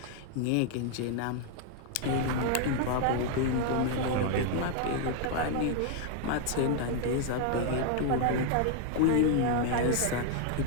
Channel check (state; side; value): different; both; correlation 0.00